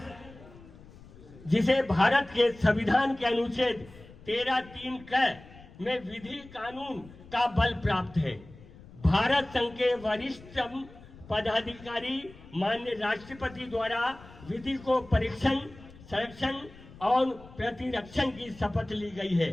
जिसे भारत के संविधान के अनुच्छेद 13(3) क में विधि कानून का बल प्राप्त है। भारत संघ के वरिष्ठतम पदाधिकारी माननीय राष्ट्रपति द्वारा विधि को परीक्षण, संरक्षण और प्रतिरक्षण की शपथ ली गई है।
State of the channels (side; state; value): left; noise; rumble, 20 dB below the sound